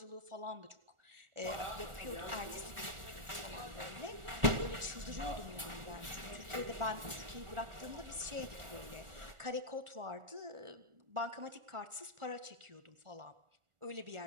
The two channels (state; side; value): late; left; 1.4 ms